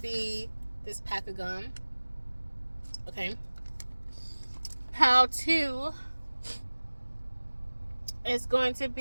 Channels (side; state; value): both; inverted; correlation -1.00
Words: this pack of gum. Okay, pal 2 is going to